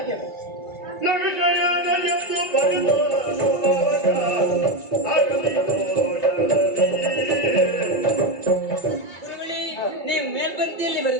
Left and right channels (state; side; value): late; right; 2.1 ms